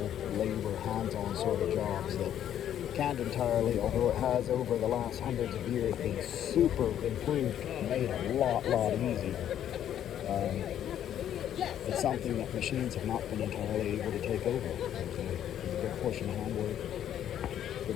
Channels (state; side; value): quieter; right; 10.5 dB